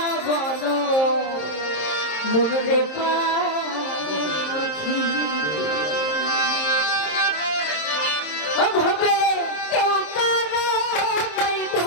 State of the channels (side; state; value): right; late; 26 ms